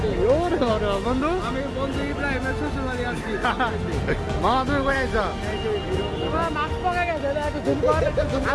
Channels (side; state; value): both; identical; correlation 1.00